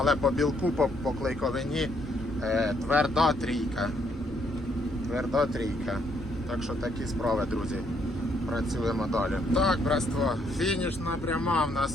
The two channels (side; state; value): both; normal; correlation 0.71